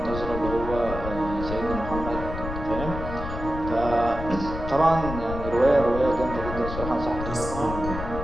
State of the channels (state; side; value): noise; left; rumble, 7 dB below the sound